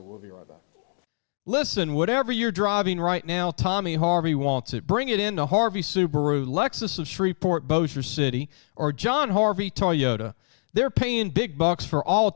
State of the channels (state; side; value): silent; right; digital silence